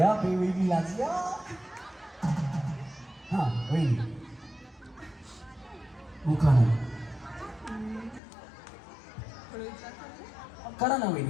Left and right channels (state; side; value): drops out; right; at 8.2 s